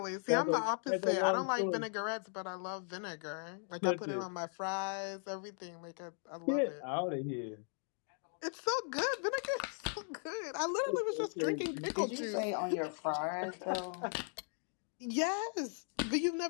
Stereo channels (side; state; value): right; silent; 53 dB below the other